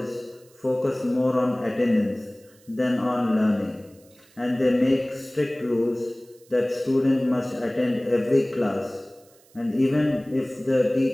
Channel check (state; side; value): noise; right; hiss, 29 dB below the sound